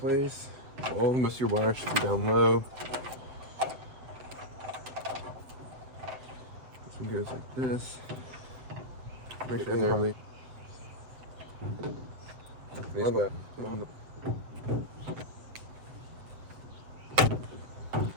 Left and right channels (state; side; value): late; left; 8.0 ms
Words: All most of your wires should be down low. This one goes like this. Make sure they're really.